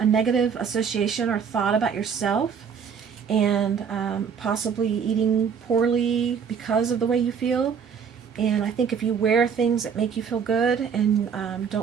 negative association or thought about yourself, and possibly eating poorly because of the way you feel. And I think if you wear things that make you feel good and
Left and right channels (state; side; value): quieter; left; 6.8 dB